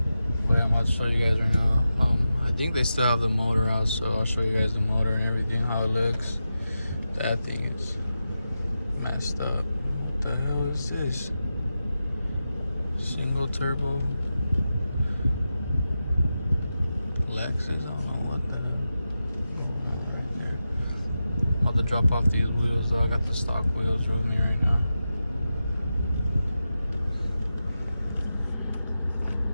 But yeah, I'm about to show you guys right now. I think they still have the motor out, so I'll show you guys the motor and everything, how it looks. That thing is messed up. What the hell is this? Single turbo Lexus, I don't know what the hell. Right there. I'm about to drop off these wheels though. I got the stock wheels with me right now.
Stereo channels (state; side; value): inverted; both; correlation -0.91